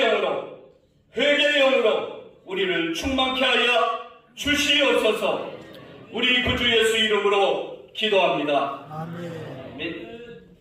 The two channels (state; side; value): identical; both; correlation 1.00